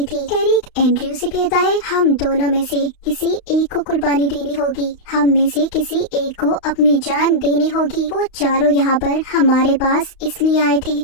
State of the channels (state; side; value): late; right; 32 ms